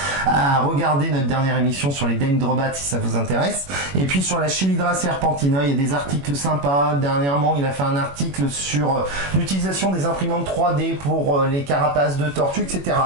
à regarder notre dernière émission sur les Dendrobats si ça vous intéresse. Et puis sur la Chelydra serpentina, il y a des articles sympas. Dernièrement, il a fait un article sur l'utilisation des imprimantes 3D pour les carapaces de tortues, etc.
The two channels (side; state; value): left; late; 21 ms